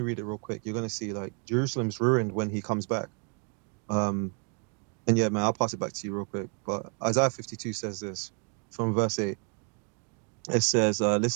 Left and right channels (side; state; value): left; quieter; 38.2 dB